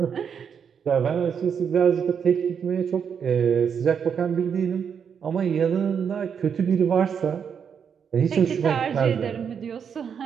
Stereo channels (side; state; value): left; quieter; 7.2 dB